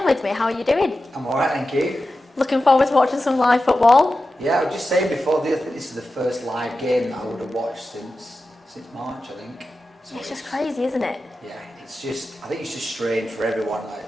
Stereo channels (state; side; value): normal; both; correlation 0.93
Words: with me. How are you doing? I'm alright, thank you. Looking forward to watching some live football? Yeah, I was just saying before, I think this is the first live game that I would have watched since March, I think. So it's just crazy, isn't it? Yeah, I think it's just strange for everyone.